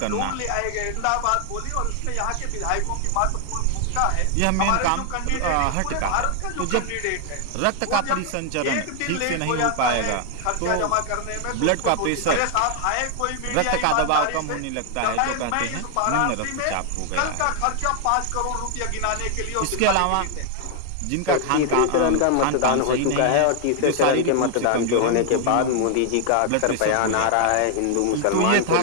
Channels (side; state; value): both; different; correlation 0.00